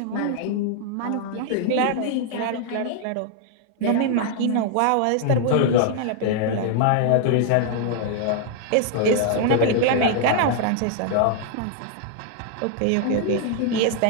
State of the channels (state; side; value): different; both; correlation 0.00